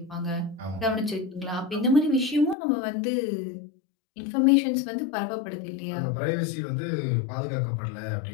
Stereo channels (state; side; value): drops out; right; at 2.6 s